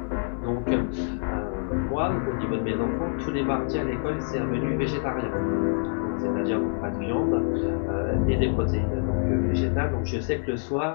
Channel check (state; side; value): silent; right; 61 dB below the other